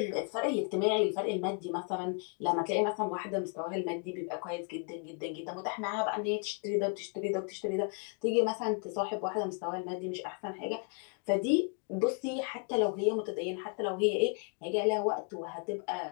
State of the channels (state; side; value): quieter; right; 39.2 dB